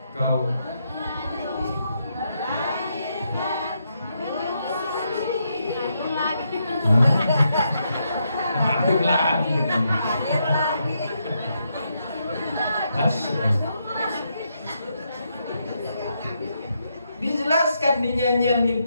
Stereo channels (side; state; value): both; inverted; correlation -0.79